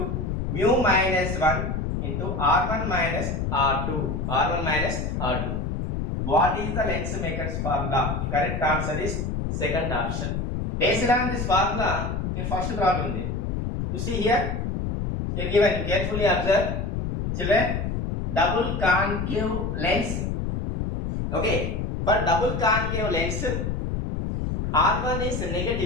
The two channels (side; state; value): left; noise; rumble, 2 dB below the sound